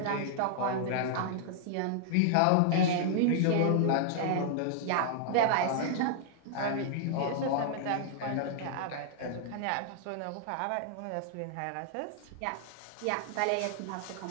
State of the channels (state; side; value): different; both; correlation -0.01